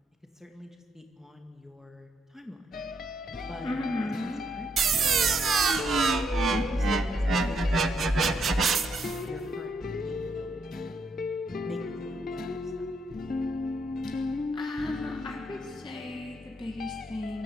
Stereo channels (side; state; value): both; normal; correlation 0.75